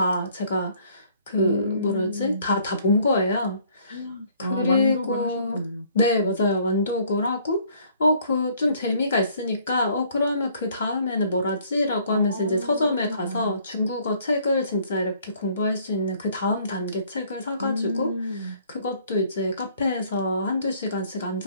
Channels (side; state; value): both; inverted; correlation -0.60